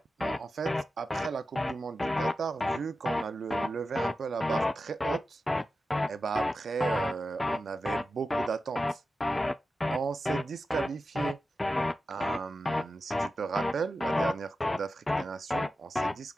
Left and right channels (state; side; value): normal; both; correlation 0.92